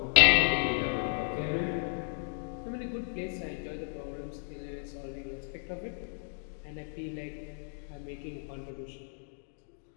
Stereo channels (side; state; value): right; silent; digital silence